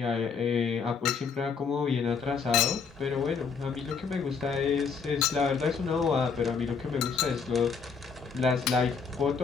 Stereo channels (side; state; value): right; quieter; 5.7 dB